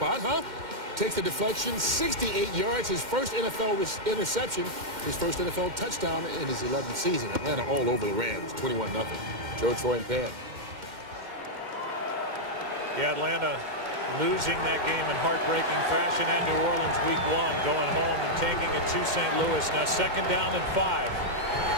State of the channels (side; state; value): left; late; 2.1 ms